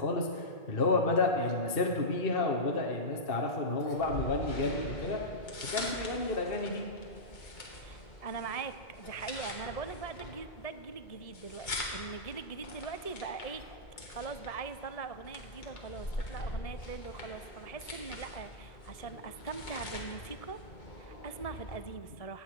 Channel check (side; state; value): right; late; 2.2 ms